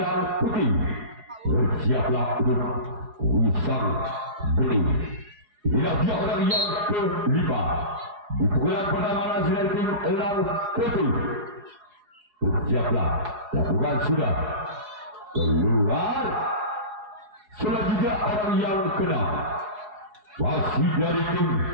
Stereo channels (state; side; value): late; left; 4.8 ms